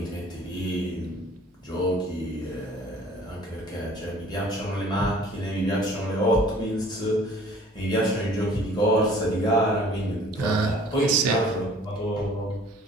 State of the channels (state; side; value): normal; both; correlation 0.52